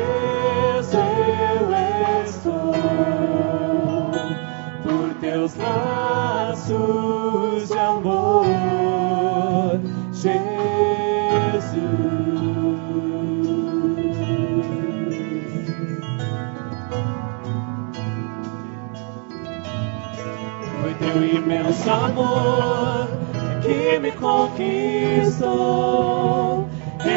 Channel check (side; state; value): left; quieter; 39.7 dB